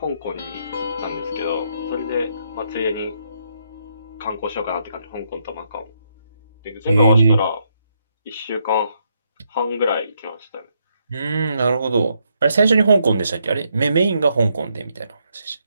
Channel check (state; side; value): inverted; both; correlation -0.76